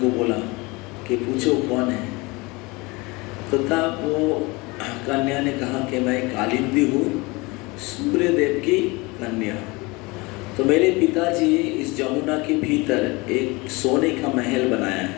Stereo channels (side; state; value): right; quieter; 24.8 dB